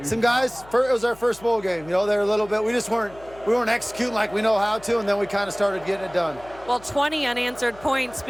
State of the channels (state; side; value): noise; left; hum, 22 dB below the sound